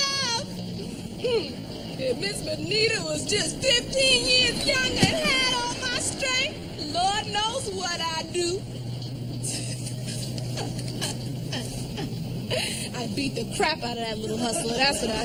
love. If Miss Benita was just 15 years younger and had all my strength, Lord knows what I'd do. I'd beat the crap out of that little hustler. That's what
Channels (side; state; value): both; identical; correlation 1.00